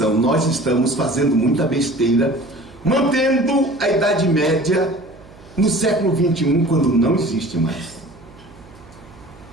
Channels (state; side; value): noise; right; hum, 23 dB below the sound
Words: Nós estamos fazendo muita besteira, mantendo a Idade Média no século XXI, quando não existe mais.